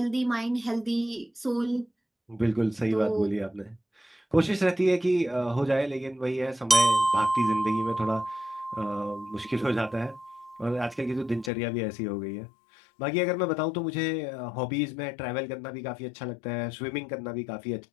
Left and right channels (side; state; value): right; drops out; at 11.5 s